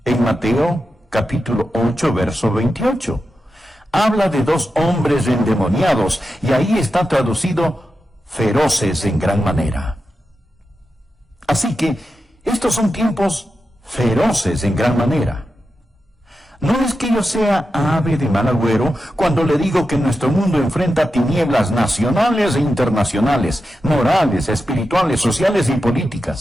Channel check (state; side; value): normal; both; correlation 0.90